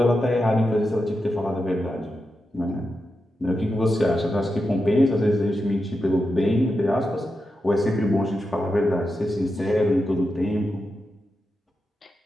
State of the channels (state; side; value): normal; both; correlation 0.88